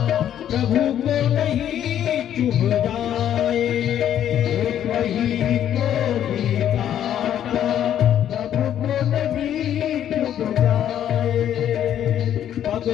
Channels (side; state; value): right; quieter; 10.5 dB